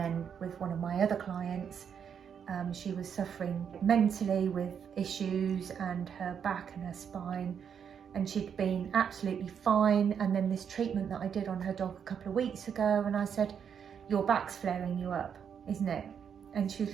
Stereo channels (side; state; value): left; quieter; 7.6 dB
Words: with one of my other clients, she was suffering mentally with issues and her back and her spine, and she'd been absolutely fine. And then this treatment that I did on her dog a couple of weeks ago, and I said, your back's flaring you up, isn't it? And she was